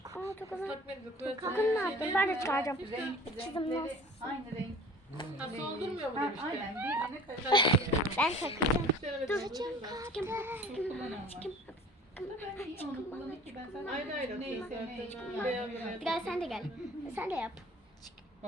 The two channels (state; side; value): normal; both; correlation 0.45